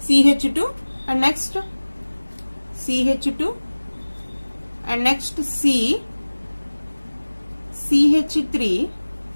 CH2, and next CH2, and next C, CH3,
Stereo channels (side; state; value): both; inverted; correlation -1.00